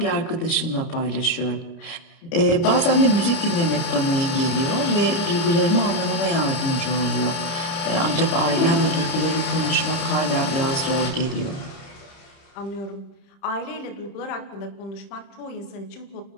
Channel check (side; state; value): right; late; 30 ms